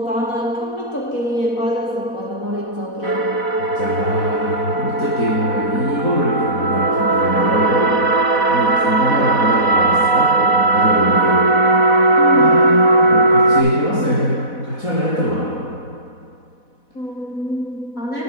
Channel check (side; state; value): right; late; 4.1 ms